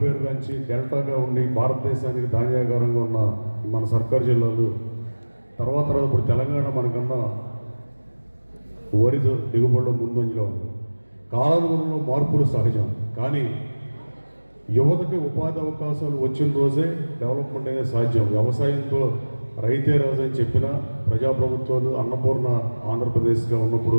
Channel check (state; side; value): inverted; both; correlation -1.00